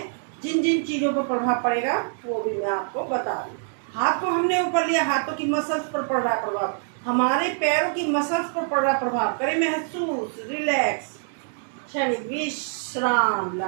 जिन जिन चीज़ों पर प्रभाव पड़ेगा वो भी मैं आपको बता दूँ। हाथ को हमने ऊपर लिया, हाथों की मसल्स पर पड़ रहा है प्रभाव, हमारे पैरों की मसल्स पर पड़ रहा है प्रभाव। करें महसूस, रिलैक्स, क्षणिक विश्राम,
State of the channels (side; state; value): left; silent; 62 dB below the other